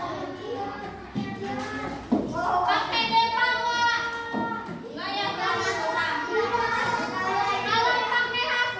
Pakai depa nggak? Nggak ya, nggak susah. Kalau pakai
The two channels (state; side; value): identical; both; correlation 1.00